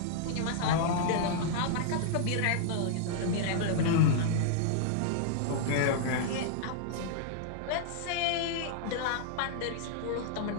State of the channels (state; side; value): different; both; correlation -0.01